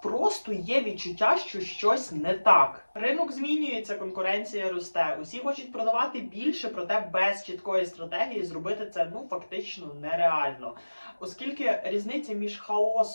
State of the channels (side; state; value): both; inverted; correlation -1.00